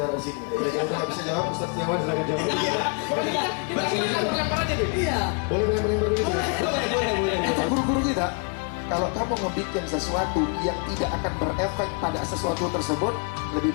di sini. Kalau udah nggak bisa jawab, Ustaz Setiawan silakan jawab. Kita lempar aja Bib. Iya. Boleh lempar begitu ya? Boleh. Kata guru-guru kita, kalau kamu ngebikin sesuatu yang tidak akan berefek pada sesuatu tersebut, lebih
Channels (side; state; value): right; quieter; 36.7 dB